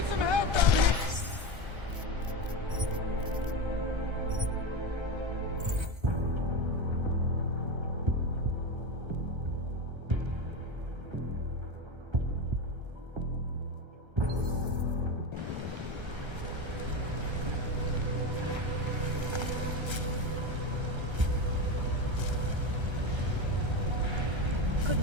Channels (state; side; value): late; left; 1.3 ms